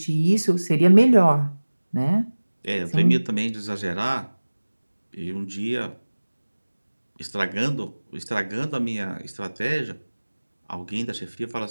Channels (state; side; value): inverted; both; correlation -1.00